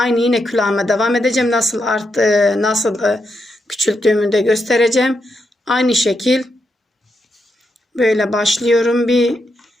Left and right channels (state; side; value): normal; both; correlation 0.83